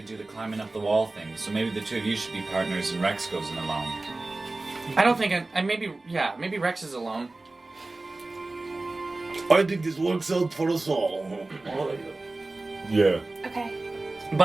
do the climbing up the wall thing, so maybe the two of you should be partners and Rex goes in alone. I don't think I maybe Rex is alone. I think this works out for us all. Yeah. Okay.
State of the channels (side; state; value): left; quieter; 3.1 dB